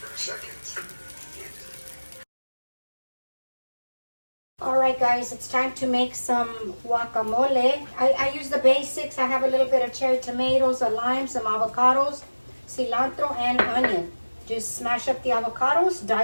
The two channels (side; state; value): both; inverted; correlation -1.00